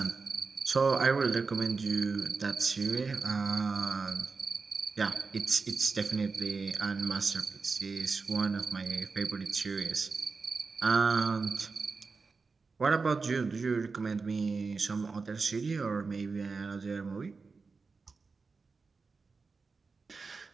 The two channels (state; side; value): quieter; left; 4.5 dB